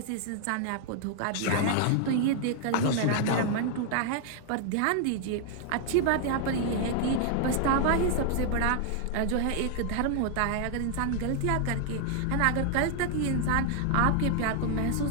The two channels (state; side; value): different; both; correlation 0.00